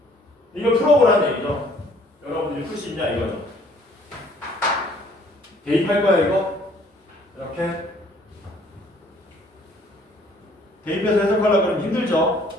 이걸 풀어보라는 얘기죠. 여러분들이 풀 수 있냐 이거죠. 대입할 거야 이거. 이렇게 대입해서 해석하려고 하면 힘들죠.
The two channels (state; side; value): normal; both; correlation 0.59